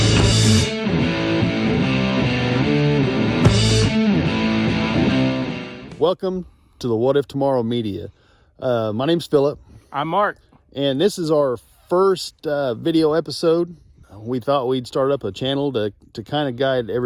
Welcome to the What If Tomorrow Media. My name's Philip. I'm Mark. And this is our first video episode. We thought we'd start up a channel to kind of guide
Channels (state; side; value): identical; both; correlation 1.00